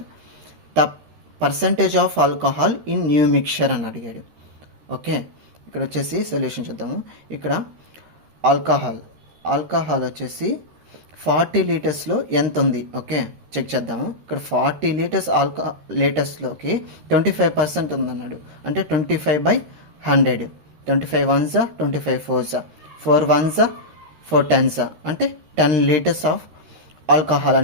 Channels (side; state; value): left; late; 13 ms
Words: the percentage of alcohol in new mixture అని అడిగాడు. ఓకే, ఇక్కడ వచ్చేసి సొల్యూషన్ చూద్దాము. ఇక్కడ ఆల్కహాల్ వచ్చేసి 40 లీటర్స్లో ఎంత ఉంది, ఓకే చెక్ చేద్దాము. ఇక్కడ 40 లీటర్స్లోకి 25% ఉందన్నాడు. అంటే 25/100. 25 1s 25 4s 4 1s 4 10s అంటే 10 లీటర్స్ ఆఫ్ ఆల్కహాల్